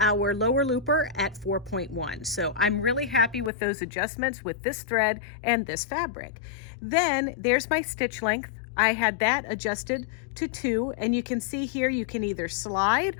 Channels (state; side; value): drops out; right; at 3.5 s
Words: lower looper, at 4.1. So I'm really happy with those adjustments with this thread and this fabric. Then there's my stitch length. I had that adjusted to 2, and you can see here you can either slide,